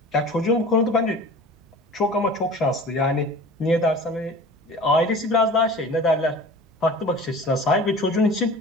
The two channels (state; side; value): normal; both; correlation 0.40